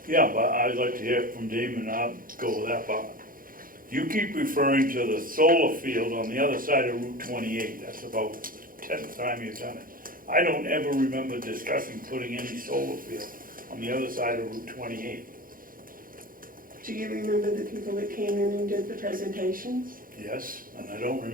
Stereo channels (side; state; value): left; late; 0.41 ms